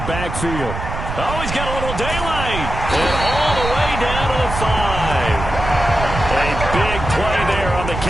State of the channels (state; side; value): noise; right; rumble, 6 dB below the sound